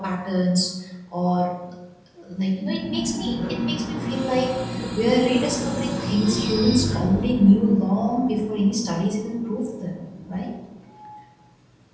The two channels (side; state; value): both; identical; correlation 1.00